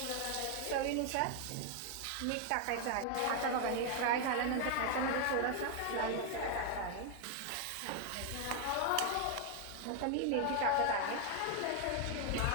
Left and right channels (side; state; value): both; different; correlation 0.00